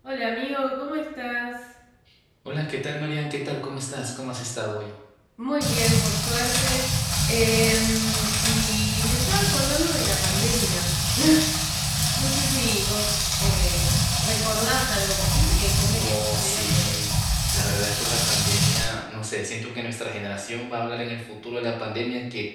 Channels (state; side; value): identical; both; correlation 1.00